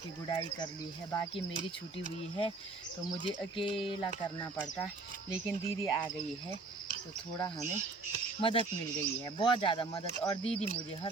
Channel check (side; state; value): left; quieter; 3.7 dB